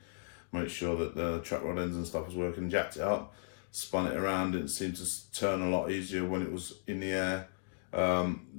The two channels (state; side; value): silent; right; digital silence